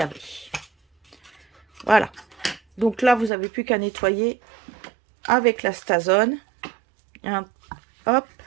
y avait. Voilà. Donc là, vous n'avez plus qu'à nettoyer avec la Stazone. Hop.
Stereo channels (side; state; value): left; drops out; at 3.3 s